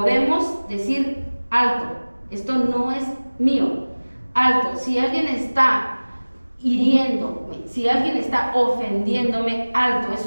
decir, alto, esto no es mío, alto, si alguien está hiriéndome, si alguien está ofendiéndome, alto,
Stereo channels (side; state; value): both; inverted; correlation -1.00